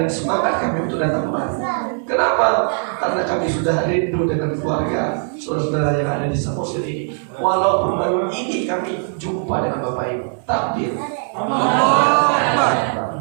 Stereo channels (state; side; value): silent; left; 57 dB below the other